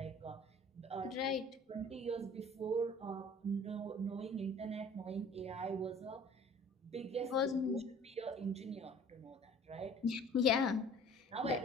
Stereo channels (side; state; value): both; normal; correlation 0.48